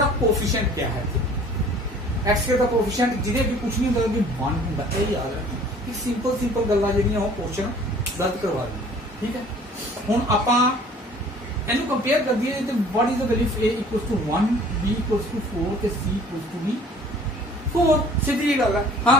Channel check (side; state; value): both; normal; correlation 0.51